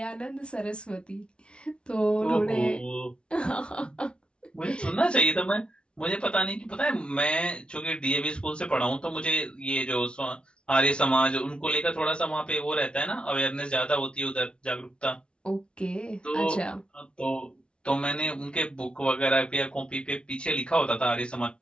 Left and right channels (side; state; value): right; late; 0.057 ms